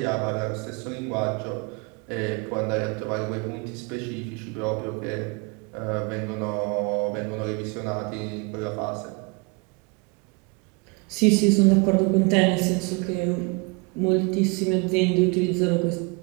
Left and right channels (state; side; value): quieter; left; 30.3 dB